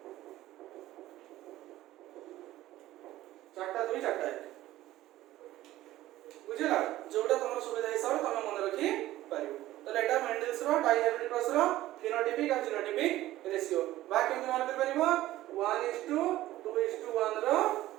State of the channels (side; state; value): left; quieter; 15.3 dB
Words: चारटा 2 चारटा 1 बुझिला जोडा तमर सुविधा हिसाब तमे मन रखी पारिबो तले एटा मेंडल्स रो डाइहाइब्रिड क्रॉस रो फिनोटाइपिक और जीनोटाइपिक रेशियो बा केमति मन कर पारिबो 1:2:1 रो